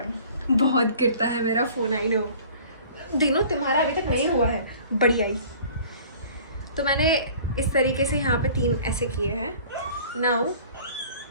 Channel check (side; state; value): both; inverted; correlation -0.48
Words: बहुत गिरता है मेरा फोन, आई नो। दिनों तुम्हारा अभी तक नहीं हुआ है, बढ़िया ही। तो मैंने इस तरीके से यहाँ पे 3 ऐसे किए हैं। नाउ